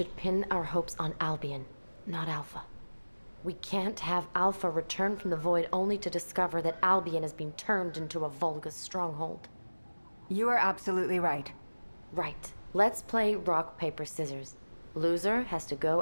pin our hopes on Albion, not Alpha. We can't have Alpha return from the void only to discover that Albion has been turned into a Volga's stronghold. You are absolutely right. Right. Let's play rock, paper, scissors. Loser has to go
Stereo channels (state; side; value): inverted; both; correlation -1.00